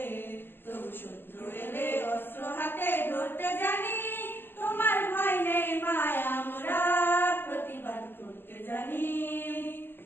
তবু শত্রু এলে অস্ত্র হাতে ধরতে জানি, তোমার ভয় নেই মায় আমরা প্রতিবাদ করতে জানি।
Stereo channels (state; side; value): late; right; 0.099 ms